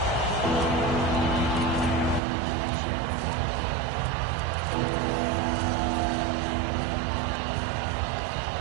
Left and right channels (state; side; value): drops out; left; at 2.2 s